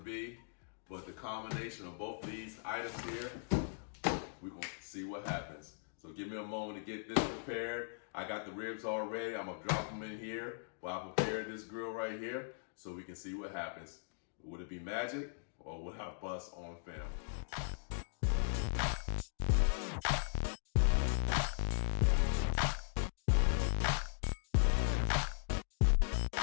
but the combination of both of these items here, we're gonna see what happens. So give me a moment to get this prepared. I got the ribs all ready. I'm gonna drop them in here while I prepare this grill right here so we can see what happens. Would it be magic or would I bust on film?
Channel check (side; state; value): right; silent; digital silence